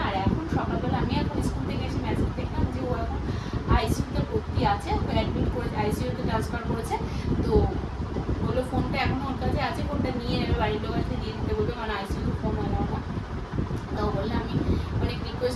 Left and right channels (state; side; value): identical; both; correlation 1.00